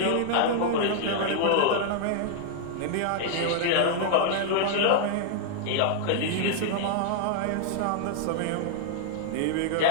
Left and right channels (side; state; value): both; different; correlation 0.00